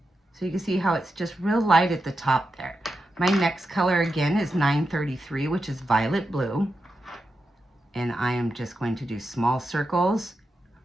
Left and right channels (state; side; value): normal; both; correlation 0.88